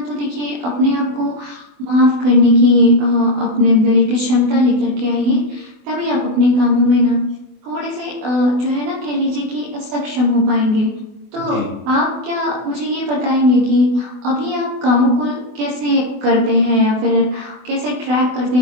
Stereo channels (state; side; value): late; left; 24 ms